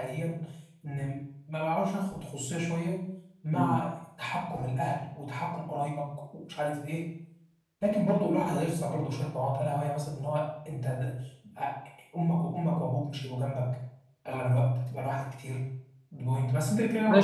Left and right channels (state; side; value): identical; both; correlation 1.00